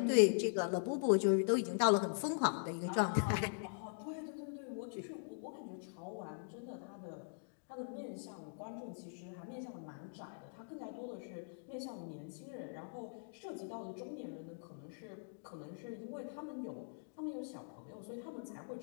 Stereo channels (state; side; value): silent; right; digital silence